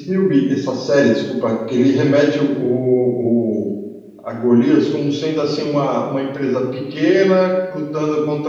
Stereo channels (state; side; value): identical; both; correlation 1.00